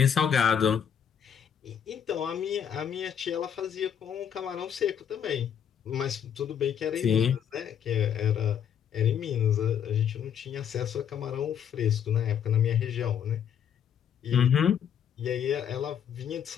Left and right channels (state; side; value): quieter; right; 8.5 dB